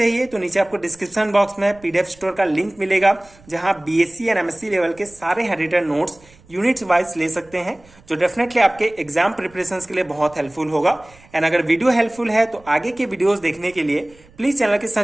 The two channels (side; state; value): right; noise; rumble, 27 dB below the sound